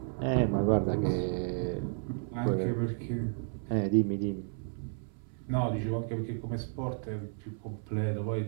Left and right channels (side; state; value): left; silent; 56 dB below the other